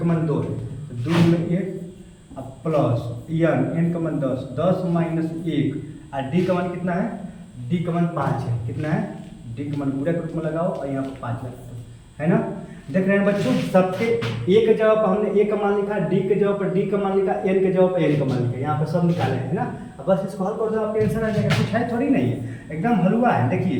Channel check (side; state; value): both; identical; correlation 1.00